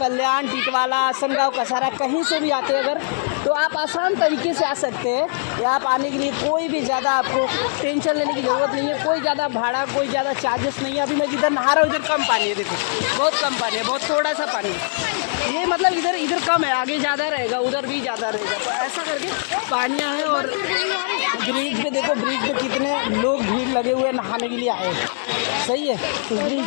टिटवाला, आसनगांव, कसारा कहीं से भी आते हैं अगर, तो आप आसान तरीके से आ सकते हैं। यहाँ आप आने के लिए कोई भी ज़्यादा आपको टेंशन लेने की ज़रूरत नहीं है, कोई ज़्यादा भाड़ा, कोई ज़्यादा चार्जेस नहीं है। अभी मैं जिधर नहा रहा हूँ इधर कम पानी है, देखो बहुत कम पानी है, बहुत थोड़ा सा पानी है। ये मतलब इधर कम है, आगे ज़्यादा रहेगा, उधर भी ज़्यादा रहेगा। तो ऐसा करके पानियाँ हैं। और ब्रिज पे देखो, ब्रिज पे कितने लोग भीड़ लगे हुए नहाने के लिए आए। सही है। उस ब्रिज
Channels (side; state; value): right; silent; digital silence